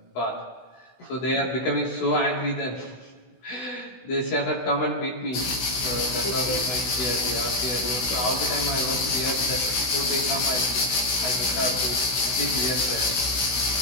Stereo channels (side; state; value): right; late; 16 ms